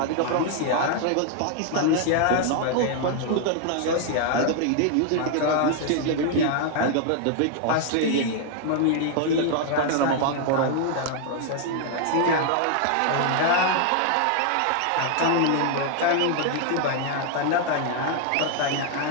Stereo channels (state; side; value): different; both; correlation 0.00